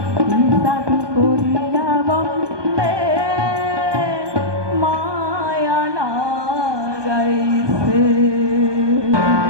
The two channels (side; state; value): left; late; 1.2 ms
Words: জাদু করিয়া বন্দে মায়া লাগাইছে।